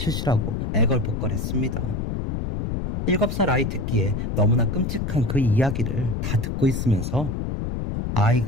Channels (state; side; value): noise; left; rumble, 2 dB below the sound